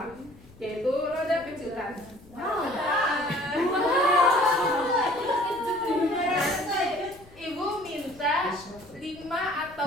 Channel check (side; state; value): left; noise; rumble, 23 dB below the sound